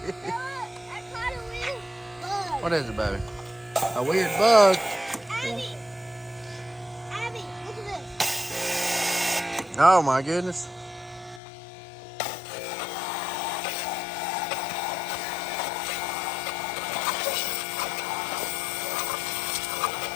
caught a weird bug. What is it, baby? A weird bug? Abby! Abby, look at this. Oh my goodness.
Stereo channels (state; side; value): drops out; right; at 11.4 s